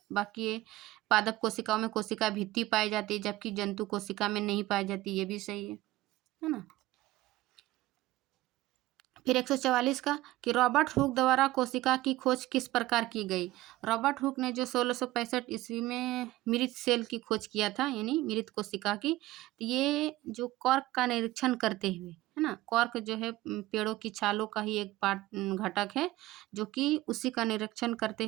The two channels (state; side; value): quieter; left; 17.2 dB